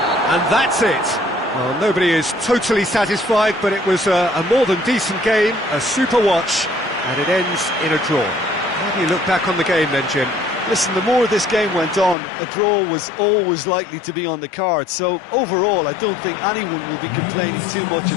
And that's it. Well, nobody is totally satisfied, but it was a more than decent game, a super watch, and it ends in a draw. How do you look back on the game then, Jim? Listen, the more this game went on, a draw was always likely to be on the card. So overall, I don't think anyone will be complaining too much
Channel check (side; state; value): right; drops out; at 12.2 s